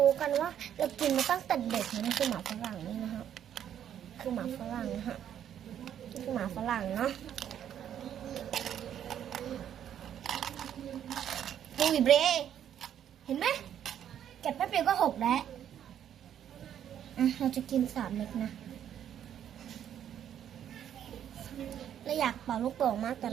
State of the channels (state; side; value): quieter; left; 9.9 dB